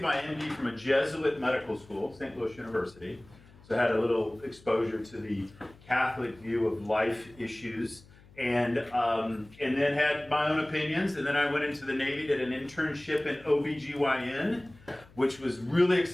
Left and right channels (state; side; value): noise; left; hum, 24 dB below the sound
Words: my MD from a Jesuit medical school, St. Louis University. So I had a little exposure to the Catholic view of life issues, and then had my own opinions. And then I went into the Navy, did an internship in OBGYN, which was really